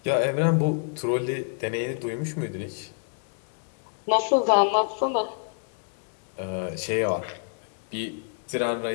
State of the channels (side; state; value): right; silent; digital silence